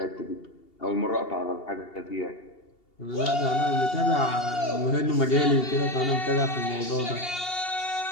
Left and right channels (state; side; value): late; right; 2.8 ms